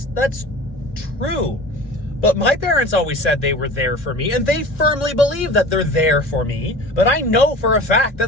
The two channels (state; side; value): late; right; 1.9 ms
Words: true. But my parents always said they were there for me, and they firmly believe that they're there for me, but I know for a fact